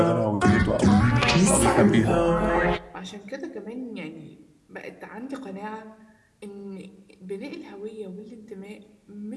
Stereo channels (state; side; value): identical; both; correlation 1.00